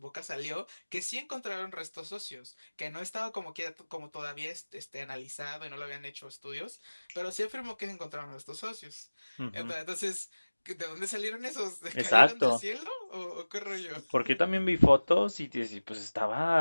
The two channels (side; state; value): both; inverted; correlation -1.00